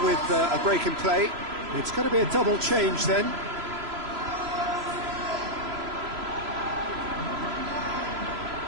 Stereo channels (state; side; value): late; left; 3.0 ms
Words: with a break in play. It's going to be a double change then.